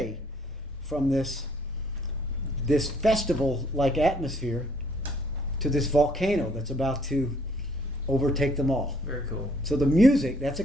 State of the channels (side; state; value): both; normal; correlation 0.63